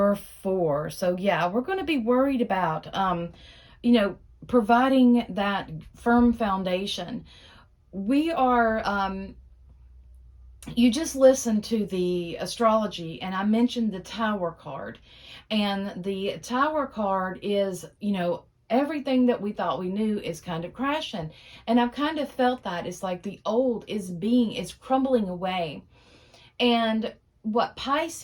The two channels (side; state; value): both; identical; correlation 1.00